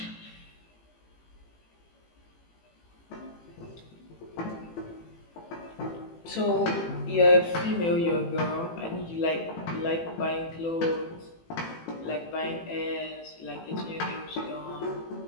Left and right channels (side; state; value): right; late; 18 ms